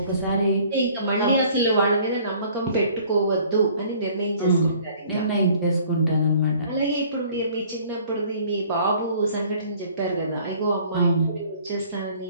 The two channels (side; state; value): both; inverted; correlation -0.54